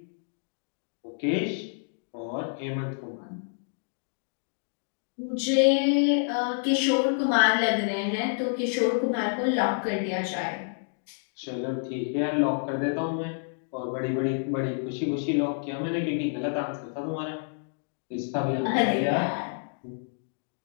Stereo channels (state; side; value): silent; right; digital silence